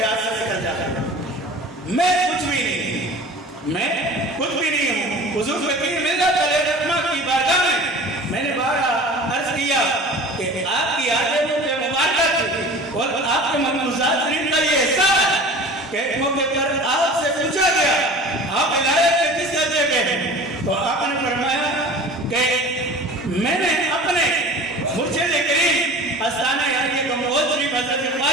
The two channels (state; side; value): normal; both; correlation 0.40